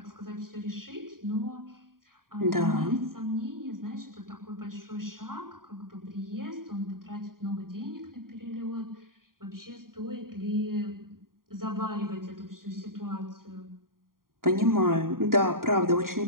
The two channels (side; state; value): left; late; 0.91 ms